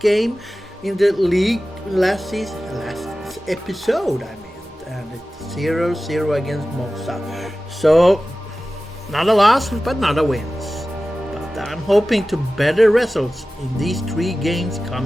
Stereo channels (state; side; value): normal; both; correlation 0.96